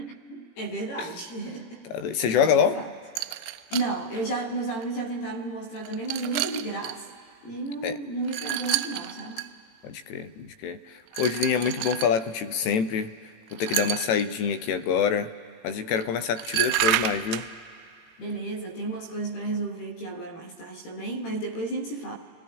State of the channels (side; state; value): right; late; 18 ms